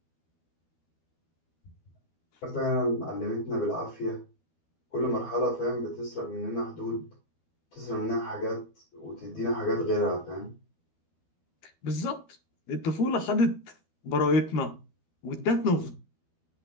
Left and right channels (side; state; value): right; late; 12 ms